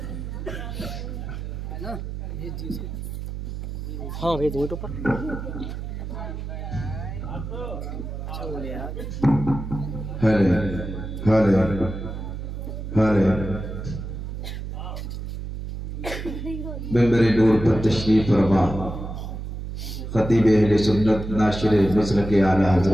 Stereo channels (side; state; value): right; noise; hum, 7 dB below the sound